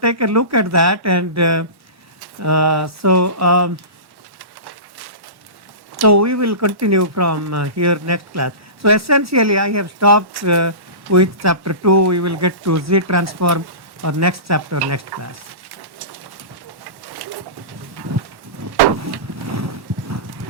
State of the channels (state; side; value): late; left; 1.1 ms